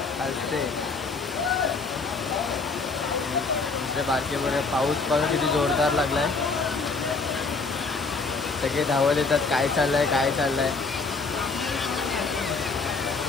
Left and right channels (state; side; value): quieter; right; 4.1 dB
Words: दुसरे बारके पोरं. पाऊस बघा किती जोरदार लागलाय. सगळे धावत येतात, काय चाललंय.